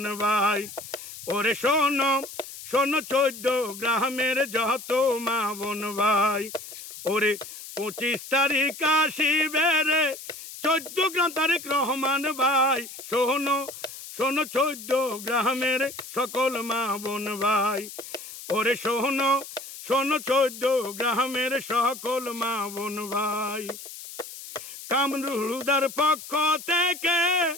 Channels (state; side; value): noise; left; hiss, 13 dB below the sound